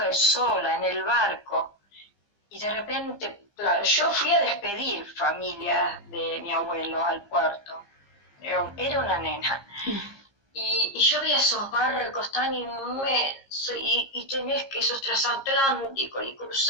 sola en el barco, y de repente, claro, yo fui a despedir familia de mi abuelo al puerto. Era una nena. Y yo veía esos barcos tan inmensos y tenés que esos transatlánticos y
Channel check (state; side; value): late; right; 15 ms